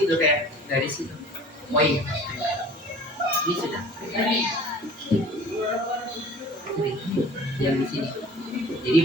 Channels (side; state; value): both; normal; correlation 0.45